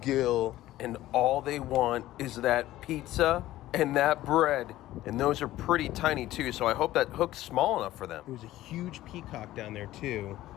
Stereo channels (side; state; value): right; quieter; 15.2 dB